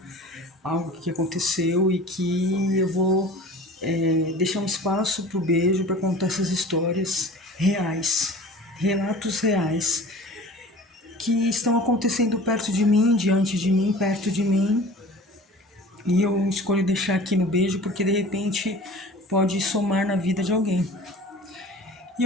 algo que aconteceu e que eu vou deixar um espaço para o beijo para contar essas histórias reais, relatos reais que estão acontecendo perto de mim, diante de mim, perto de mim. E eu escolho deixar aqui no beijo porque de repente pode somar na vida de alguém. E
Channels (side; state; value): both; normal; correlation 0.42